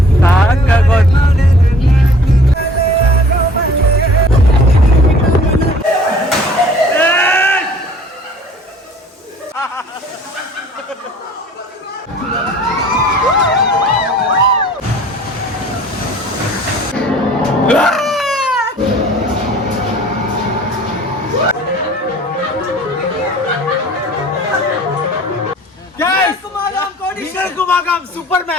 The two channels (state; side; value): normal; both; correlation 0.51